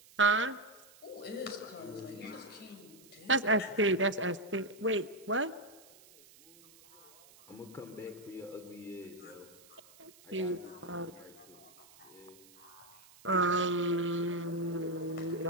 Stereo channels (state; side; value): noise; right; hiss, 23 dB below the sound